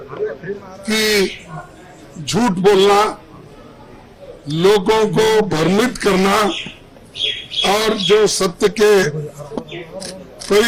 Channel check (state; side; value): identical; both; correlation 1.00